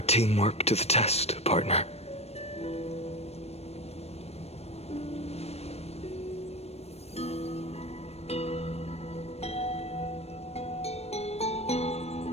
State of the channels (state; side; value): late; right; 0.30 ms